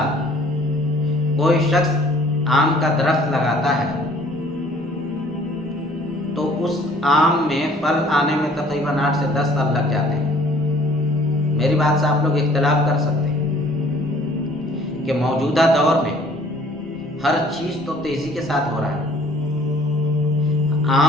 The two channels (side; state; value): both; normal; correlation 0.55